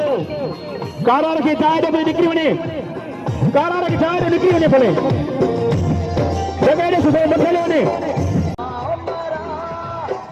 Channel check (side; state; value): both; identical; correlation 1.00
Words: रखे चाहे तो निकली वने कारा रखे चाहे तो निकली वने भले जगह सुबह मथले वने